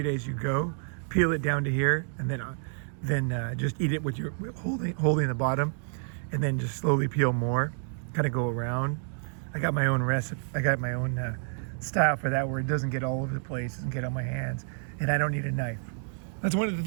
as you go. Peel it down to here and then just eat it with your holding the bottom, and then just slowly peel more. Kind of go around. I got my own recipe. I got my own style for that, where it doesn't get all over the place and get on my hands, and I don't need a knife. That's one of the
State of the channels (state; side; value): silent; left; digital silence